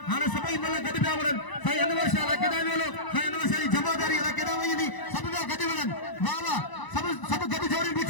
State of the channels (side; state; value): right; late; 1.0 ms